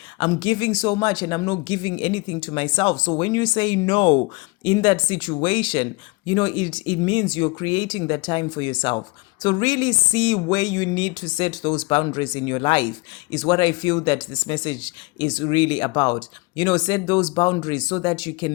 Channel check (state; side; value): quieter; right; 25.8 dB